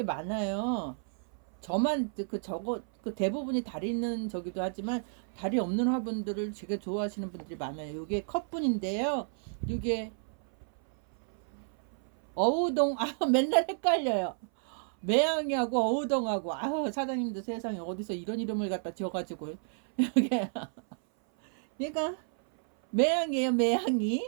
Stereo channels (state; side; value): silent; left; 57 dB below the other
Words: 많아요. 저만 그 대부분이 다리 있는 저기도 하지만 다리 없는 화분들을 되게 좋아하시는 분들이 많아요. 요게 컵분인데요. 요게 어우동 맨날 헷갈려요. 매양이하고 어우동하고 사장님도 세상에 어디서 이런 이름을 갖다 지어가지고 이게 얘가 매양이에요.